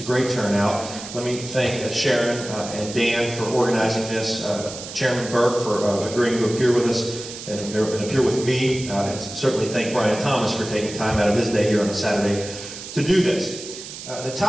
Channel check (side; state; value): right; noise; hiss, 11 dB below the sound